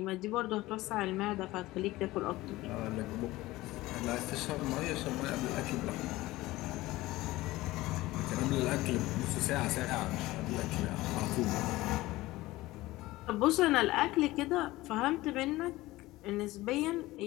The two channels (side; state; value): right; quieter; 18.4 dB